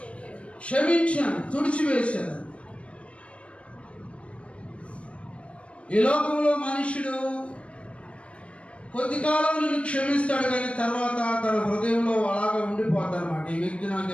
క్షమించాను, తుడిచివేశాను. ఈ లోకంలో మనుషుడు కొద్ది కాలం నుండి క్షమిస్తాడు, కానీ తర్వాత తన హృదయంలో అలాగా ఉండిపోతాడు అన్నమాట. ఈ వ్యక్తి నాకు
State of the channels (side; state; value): right; late; 0.061 ms